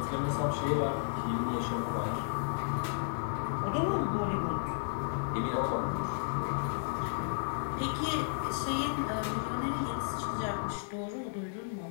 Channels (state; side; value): silent; right; digital silence